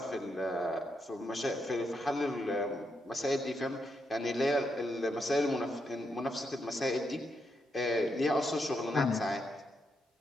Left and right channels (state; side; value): normal; both; correlation 0.81